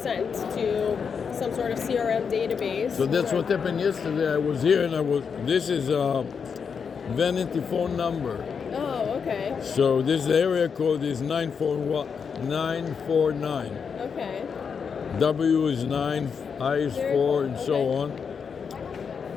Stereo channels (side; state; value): right; quieter; 6.3 dB